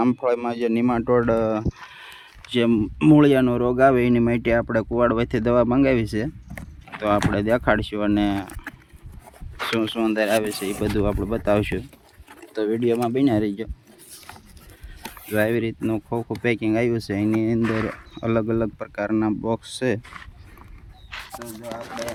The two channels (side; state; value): both; identical; correlation 1.00